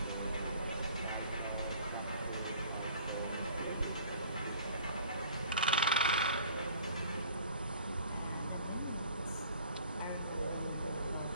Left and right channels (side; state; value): both; inverted; correlation -0.49